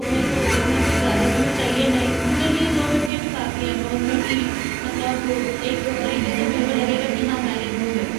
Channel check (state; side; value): drops out; left; at 3.1 s